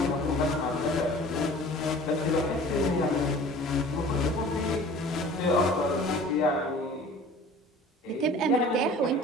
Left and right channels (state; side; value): normal; both; correlation 0.45